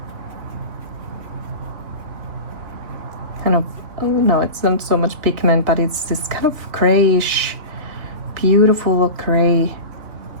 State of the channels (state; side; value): late; left; 3.7 ms